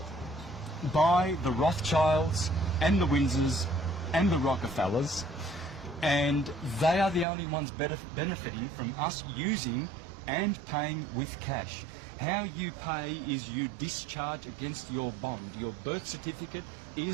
by the Rothschilds and the Windsors and the Rockefellers, and they are the only ones benefiting from us using and paying with cash. How you pay is you discharge against your bond. Your birth certificate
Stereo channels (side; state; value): left; drops out; at 7.2 s